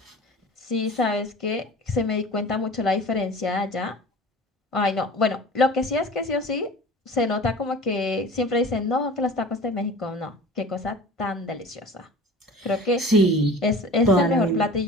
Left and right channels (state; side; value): normal; both; correlation 0.40